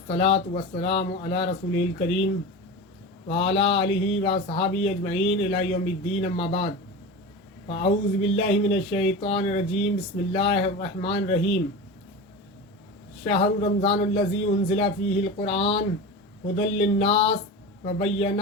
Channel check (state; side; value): normal; both; correlation 0.27